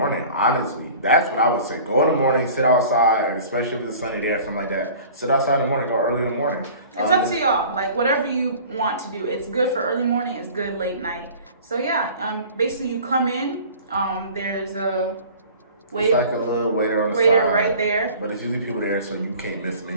Honestly, that's what I would say. Go in the morning, sit outside, and especially if it's sunny day or something like that. Sit outside in the morning. Go early in the morning. It's up to y'all. Like whatever you want to do. It's good for early morning. It's good late night. So yeah, basically you come in. There's a it's like a little waiter on the side, right there. But it's usually people there, so you can't miss them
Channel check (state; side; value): inverted; both; correlation -0.44